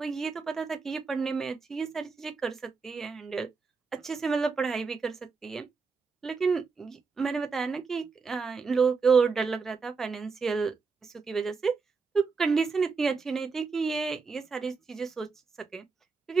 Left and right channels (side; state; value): left; quieter; 4.8 dB